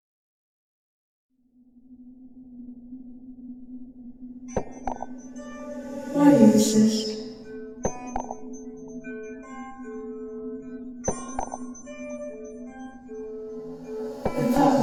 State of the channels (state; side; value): identical; both; correlation 1.00